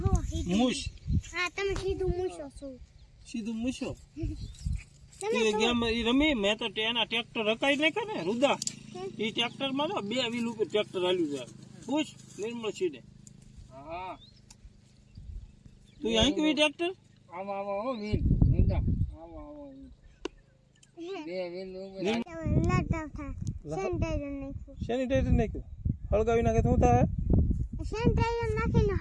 મુશ સીધું મૂશો એ ગેમ ઈ રમી. મેં તો એના ટ્રેક્ટર રકાઈ નાખ્યા ને રુદા. એ ટ્રેક્ટર માં 2 વ્હીલ ઉપર ટ્રેક્ટર હાલ્યું છે. પૂછ નિર્મળ સીડે. હા તું અહીં કેવી ટ્રેક્ટર આમાં આમાં હો વ્હીલ રુદા આમાં આમાં 2 વ્હીલ સેનિટાઈઝર નાખ્યું. હળગાવી નાખે શું થાય? સેનિટાઈઝર નાખીને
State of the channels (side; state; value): both; identical; correlation 1.00